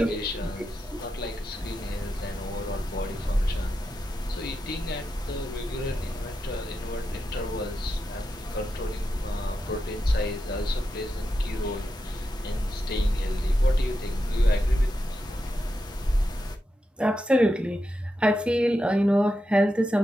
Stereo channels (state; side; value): normal; both; correlation 0.88